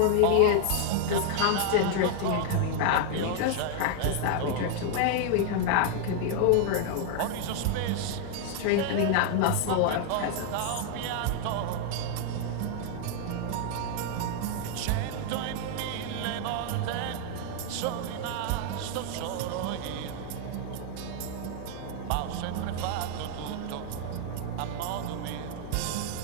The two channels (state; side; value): different; both; correlation 0.00